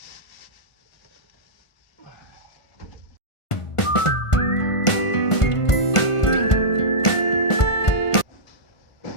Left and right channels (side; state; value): right; late; 1.5 ms